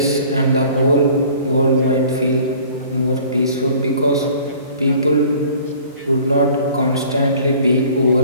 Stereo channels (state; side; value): inverted; both; correlation -0.50